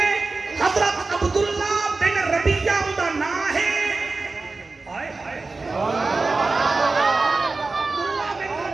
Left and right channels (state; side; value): quieter; left; 3.7 dB